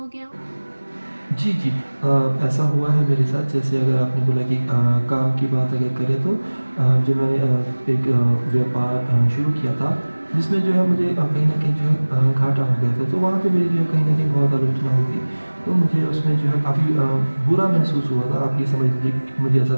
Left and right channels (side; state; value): both; inverted; correlation -1.00